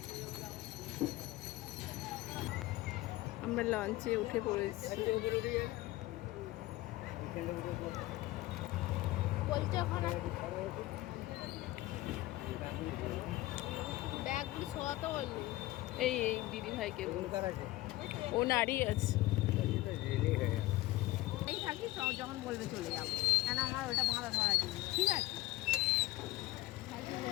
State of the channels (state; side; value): quieter; right; 18.2 dB